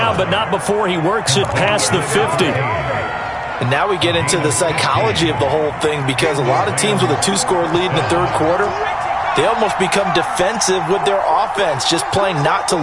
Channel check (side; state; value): both; identical; correlation 1.00